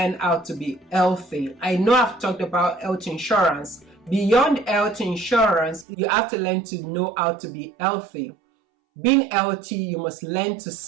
how to be healthy. I know I've talked about health insurance. Beyond health insurance, you have to learn to know how to be healthy. Being healthy, you must learn to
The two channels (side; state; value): left; drops out; at 5.9 s